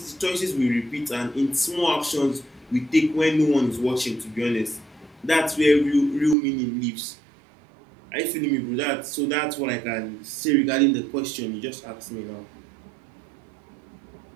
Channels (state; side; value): drops out; left; at 6.4 s